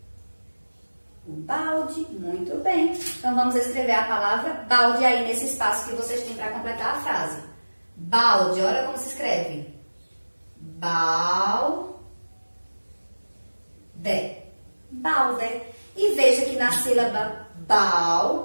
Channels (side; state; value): both; inverted; correlation -1.00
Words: O balde. Muito bem. Então, vamos escrever a palavra balde aí nesse espaço que vocês têm para completar a frase. Balde, olha como se escreve. Balde. Balde. E veja que na sílaba bal,